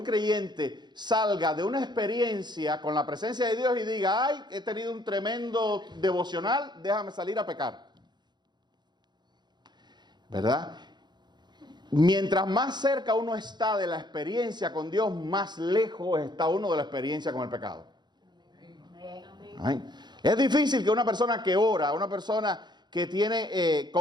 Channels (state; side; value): late; left; 0.21 ms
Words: creyente salga de una experiencia con la presencia de Dios y diga, ay, he tenido un tremendo devocional, déjame salir a pecar. ¿Verdad? Mientras más cerca uno está de la experiencia con Dios, más lejos está uno de la experiencia con el pecado. Amén. Es difícil que una persona que ora, una persona que tiene